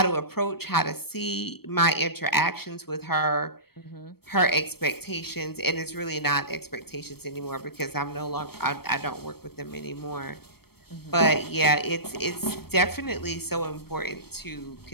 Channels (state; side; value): late; right; 0.96 ms